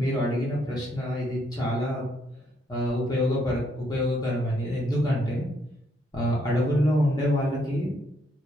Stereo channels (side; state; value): both; normal; correlation 0.72